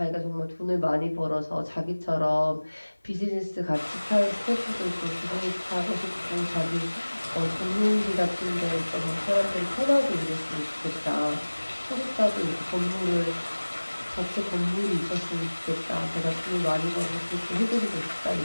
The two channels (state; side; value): inverted; both; correlation -1.00